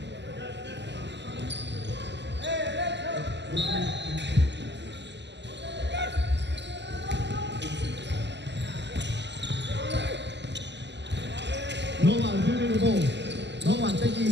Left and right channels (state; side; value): late; left; 0.51 ms